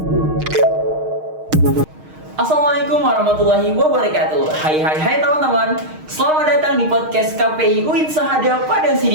Assalamualaikum warahmatullahi wabarakatuh. Hai teman-teman. Selamat datang di podcast KPI UIN Sahada Padang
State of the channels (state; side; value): late; left; 6.5 ms